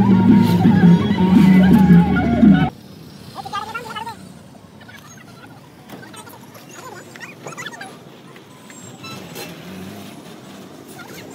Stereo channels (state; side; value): identical; both; correlation 1.00